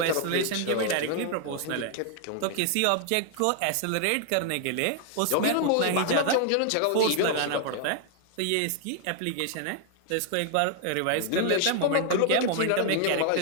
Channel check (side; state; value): both; different; correlation 0.00